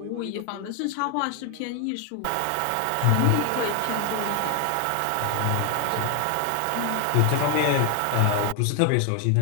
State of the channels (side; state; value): both; different; correlation 0.01